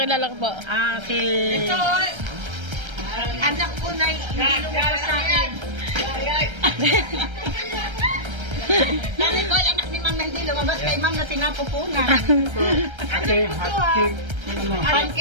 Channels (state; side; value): late; left; 1.3 ms